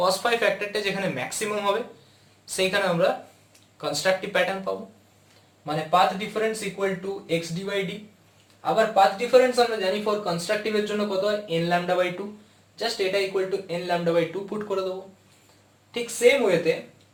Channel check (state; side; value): identical; both; correlation 1.00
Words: phi ফ্যাক্টরটা যেখানে ম্যাক্সিমাম হবে সেইখানে আমরা কনস্ট্রাকটিভ প্যাটার্ন পাবো, মানে path difference equal to xd by d। আবার পাথ ডিফারেন্স আমরা জানি ফর কনস্ট্রাকটিভ এর জন্য কত হয়, n lambda বাই 2, জাস্ট এটা equal to n lambda by 2 put করে দেবো। ঠিক সেম ওয়েতে